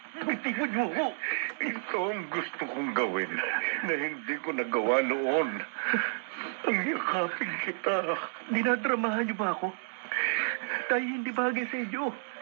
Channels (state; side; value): silent; left; digital silence